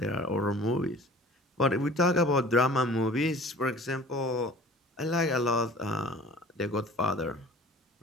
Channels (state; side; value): normal; both; correlation 0.46